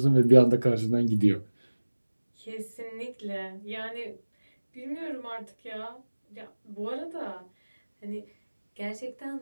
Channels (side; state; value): both; inverted; correlation -1.00